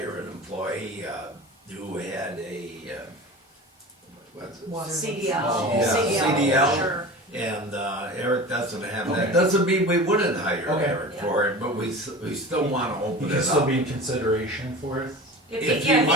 an employee who had a, what's it? CDL, Oh, yeah, CDL. sure. And Eric doesn't have that. Okay. Doesn't mean we wouldn't hire Okay. Eric for it, but we still want to He open can it still up. be in consideration for it? If If he, yeah, he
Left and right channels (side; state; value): both; normal; correlation 0.34